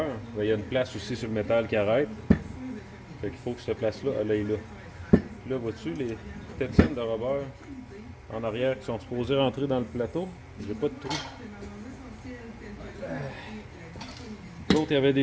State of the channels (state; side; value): identical; both; correlation 1.00